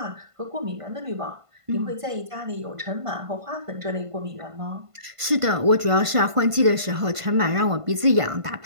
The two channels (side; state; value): left; late; 1.5 ms